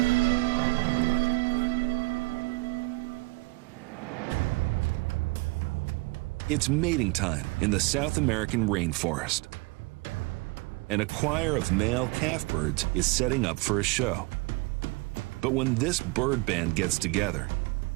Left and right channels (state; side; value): quieter; left; 25.0 dB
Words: It's mating time in the South American rainforest. And a choir of male calf birds is setting up for a show. But when this bird band gets together,